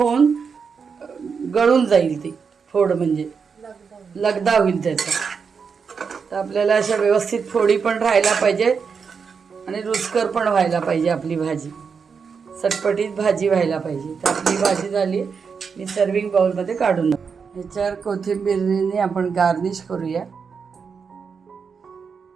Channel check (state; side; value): quieter; left; 5.8 dB